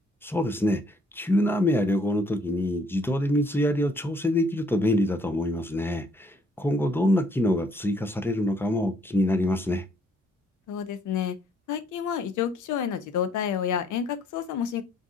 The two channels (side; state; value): both; normal; correlation 0.65